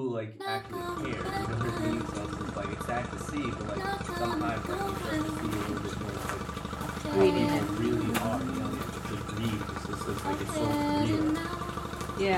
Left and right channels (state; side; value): identical; both; correlation 1.00